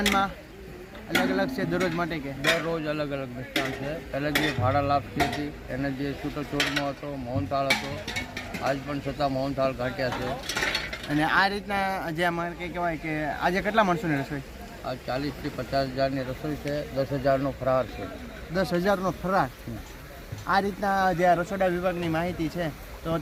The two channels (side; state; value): both; identical; correlation 1.00